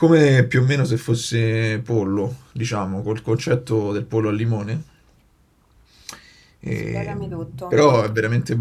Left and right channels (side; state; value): both; identical; correlation 1.00